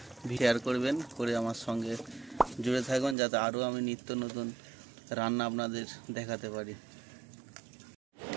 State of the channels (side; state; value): left; drops out; at 3.2 s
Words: শেয়ার করবেন, করে আমার সঙ্গে জুড়ে থাকুন যাতে আরও আমি নিত্য নতুন রান্না আপনাদের দেখাতে পারি।